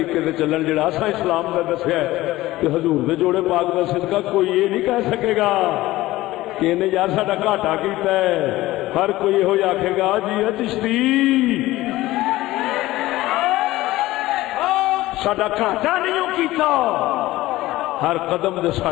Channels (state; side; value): quieter; right; 17.3 dB